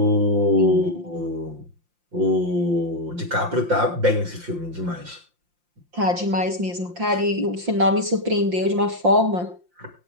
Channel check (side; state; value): left; late; 5.7 ms